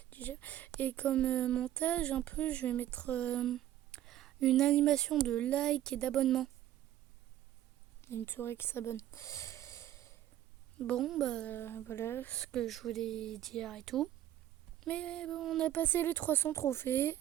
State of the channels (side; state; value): left; quieter; 12.6 dB